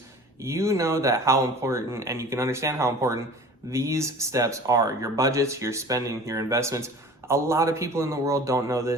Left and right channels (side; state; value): both; normal; correlation 0.42